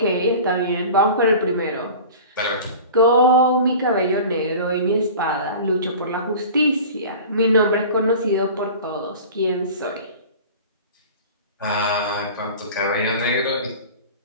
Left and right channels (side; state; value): both; inverted; correlation -0.38